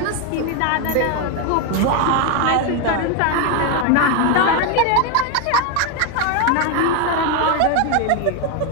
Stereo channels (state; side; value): different; both; correlation 0.02